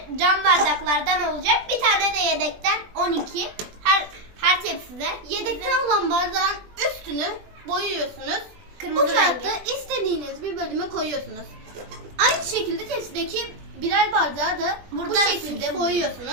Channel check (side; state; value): left; late; 20 ms